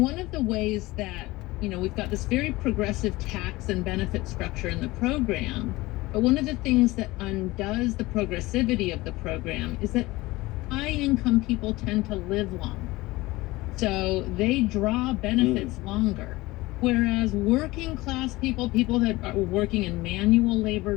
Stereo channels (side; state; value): right; quieter; 20.1 dB